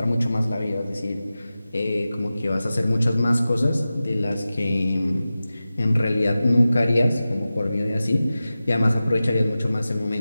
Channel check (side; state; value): both; inverted; correlation -0.95